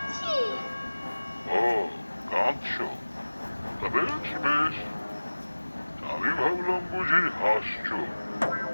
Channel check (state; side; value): inverted; both; correlation -1.00